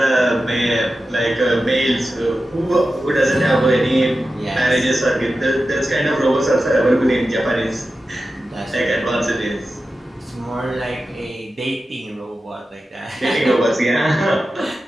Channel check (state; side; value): normal; both; correlation 0.92